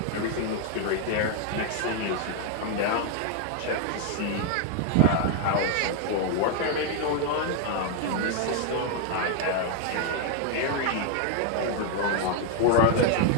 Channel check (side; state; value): both; different; correlation 0.00